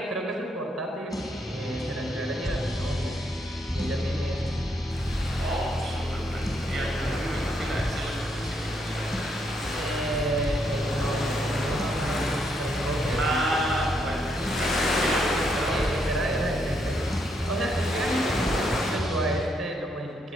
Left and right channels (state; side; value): normal; both; correlation 0.76